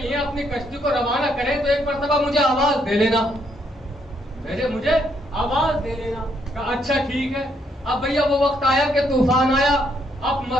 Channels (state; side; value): normal; both; correlation 0.73